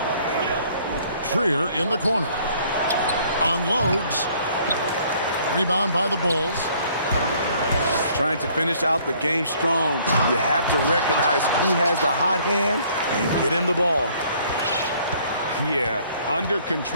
Trier in the corner. Unloads. Rebound by the Bulls. Trying to finish out the game strong. You have to recognize who has the hot hand and get him the ball. Yeah, under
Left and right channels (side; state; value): both; inverted; correlation -0.60